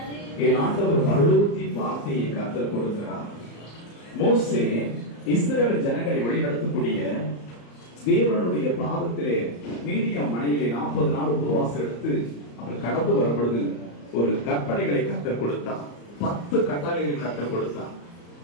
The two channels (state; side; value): late; right; 34 ms